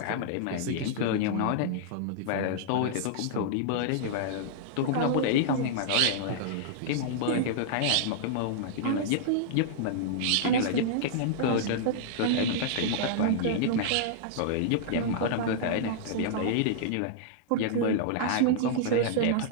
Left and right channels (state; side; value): different; both; correlation -0.01